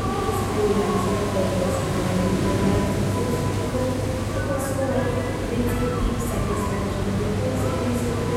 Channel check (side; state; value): both; identical; correlation 1.00